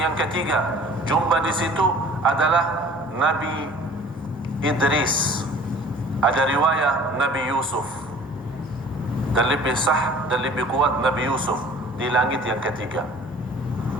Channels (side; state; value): both; normal; correlation 0.48